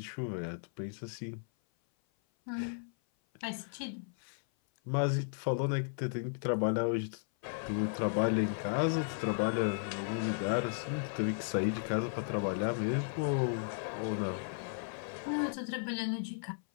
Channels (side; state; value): right; silent; 54 dB below the other